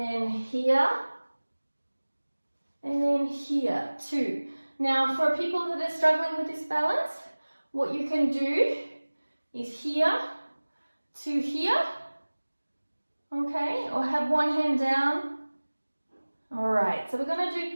here, and then here, 2. Now, for people that are struggling with this balance, what you can do is here to here, okay? Or have one hand down. All right, so we're going to do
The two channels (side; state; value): both; inverted; correlation -1.00